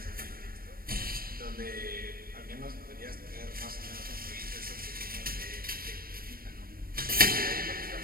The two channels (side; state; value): left; late; 0.43 ms